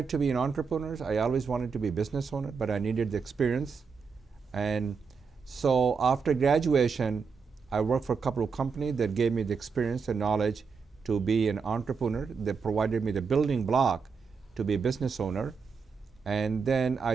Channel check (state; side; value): quieter; left; 5.5 dB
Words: to be an entrepreneur. I always wanted to be a business owner, but I needed the experience. And so after graduation, I worked for a couple of companies that gave me the experience and knowledge to be an entrepreneur, that provided me the building block to be a business owner. And then